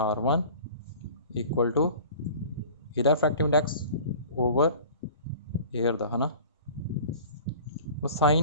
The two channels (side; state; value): both; inverted; correlation -0.43